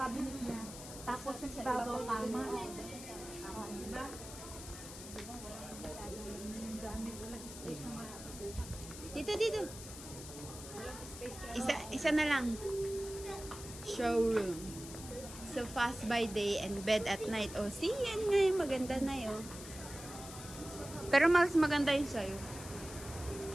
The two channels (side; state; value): left; noise; hiss, 12 dB below the sound